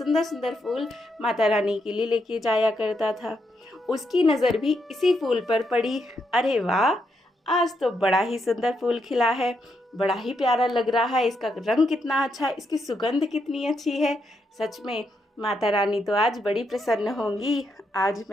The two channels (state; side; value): normal; both; correlation 0.80